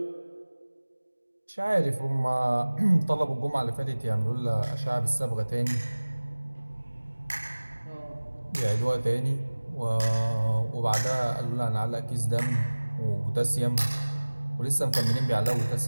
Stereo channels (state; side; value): inverted; both; correlation -1.00